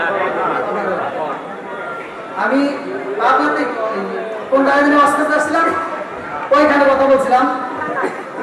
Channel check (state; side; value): identical; both; correlation 1.00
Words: আমি আপনাদের কোন জায়গায় ওয়াজ করতে আসছিলাম, ওইখানে কথা বলছিলাম,